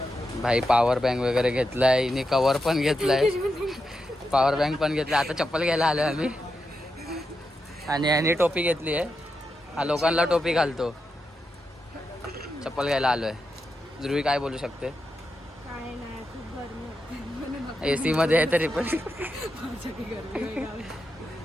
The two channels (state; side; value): normal; both; correlation 0.87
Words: भाई पॉवर बँक वगैरे घेतलाय. इने कवर पण घेतलाय. पॉवर बँक पण घेतलाय. आता चप्पल घ्यायला आलोय आम्ही. आणि याने टोपी घेतली आहे. हा लोकांना टोपी घालतो. चप्पल घ्यायला आलोय. ध्रुवी काय बोलू शकते. AC मध्ये आहे तरी पण.